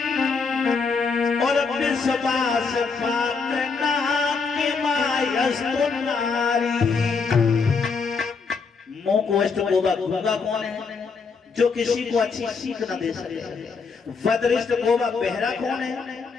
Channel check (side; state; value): right; quieter; 5.0 dB